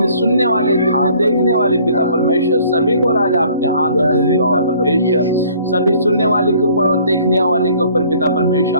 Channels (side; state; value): both; inverted; correlation -0.57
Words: सुनने वाले, जितने देखने वाले पिता परमेश्वर, सभी को राजा आपके हाथ में दे पिता परमेश्वर, सभी सुनने वाले के ऊपर और देखने वाले के ऊपर पिता परमेश्वर